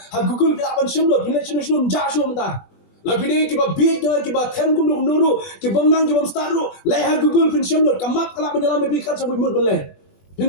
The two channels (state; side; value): late; right; 21 ms